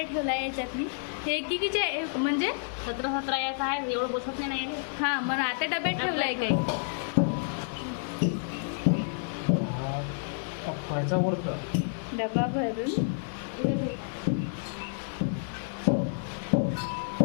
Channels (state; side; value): silent; right; digital silence